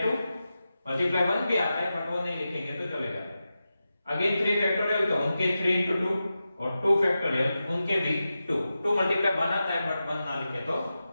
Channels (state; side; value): inverted; both; correlation -0.92